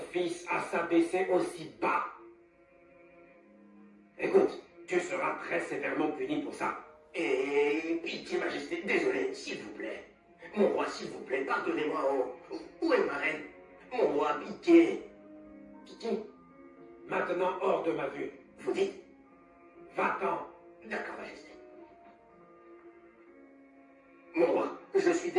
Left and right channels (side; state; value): both; identical; correlation 1.00